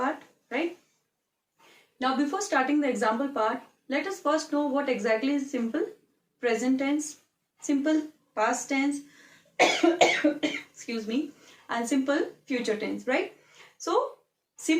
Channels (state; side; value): identical; both; correlation 1.00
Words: right? Now before starting the example part, let us first know what exactly is simple present tense, simple past tense, excuse me, and simple future tense, right? So